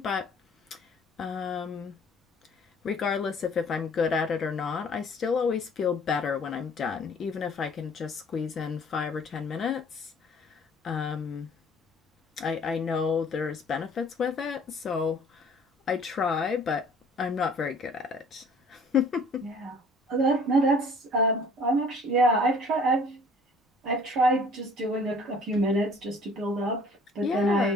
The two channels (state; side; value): normal; both; correlation 0.53